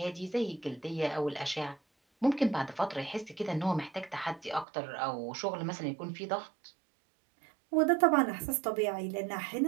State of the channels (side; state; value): left; drops out; at 4.7 s